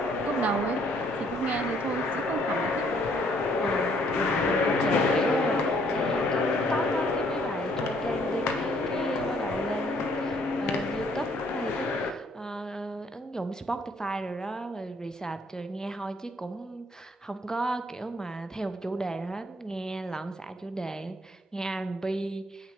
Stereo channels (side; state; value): both; normal; correlation 0.65